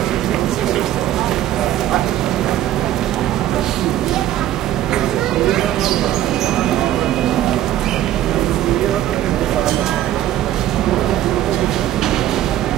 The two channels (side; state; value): left; quieter; 12.8 dB